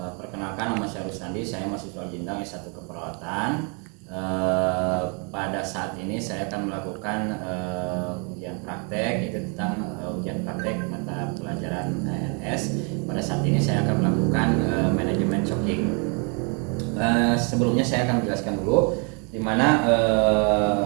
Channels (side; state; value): left; quieter; 36.0 dB